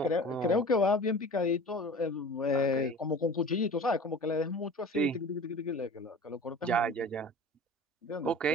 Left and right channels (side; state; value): both; normal; correlation 0.39